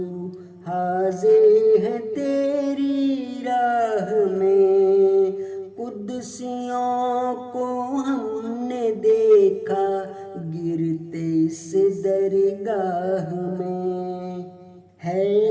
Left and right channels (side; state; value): both; identical; correlation 1.00